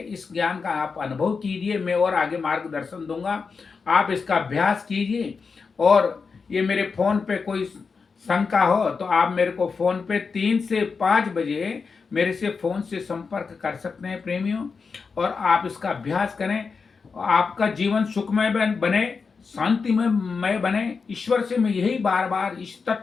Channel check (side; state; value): right; quieter; 5.1 dB